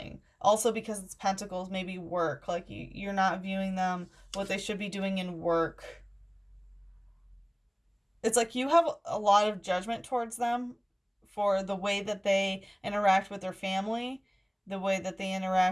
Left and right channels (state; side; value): identical; both; correlation 1.00